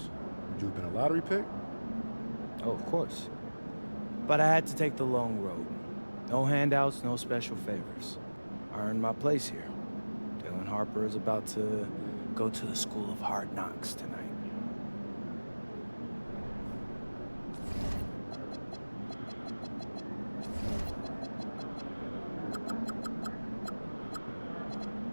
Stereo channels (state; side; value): inverted; both; correlation -1.00